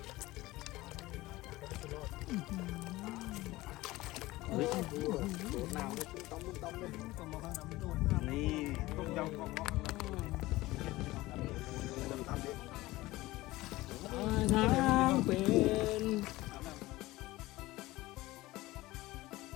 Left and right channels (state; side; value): quieter; right; 18.8 dB